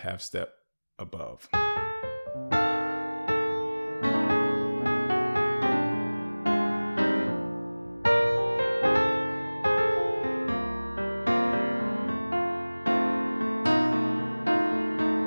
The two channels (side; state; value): both; inverted; correlation -1.00